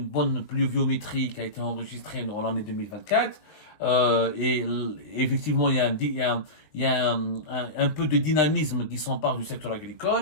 bonne pluviométrie qui a été enregistrée dans l'année 2024, et effectivement, il y a un peu de dynamisme qui s'empare du secteur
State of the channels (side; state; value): right; late; 19 ms